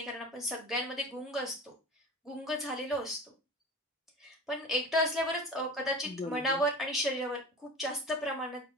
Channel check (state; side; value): normal; both; correlation 0.36